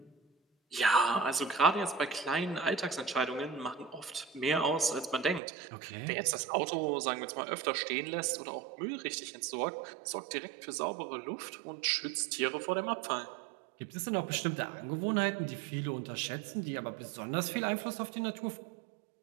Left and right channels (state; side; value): drops out; left; at 5.4 s